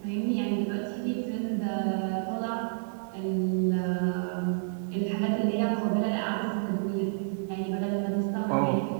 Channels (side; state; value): left; silent; 58 dB below the other